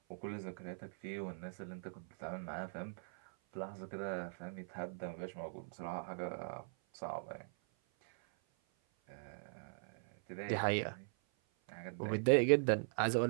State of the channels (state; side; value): silent; left; 51 dB below the other